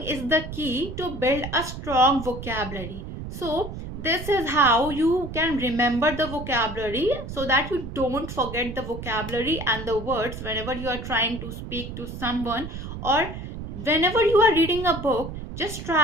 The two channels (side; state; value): right; noise; rumble, 9 dB below the sound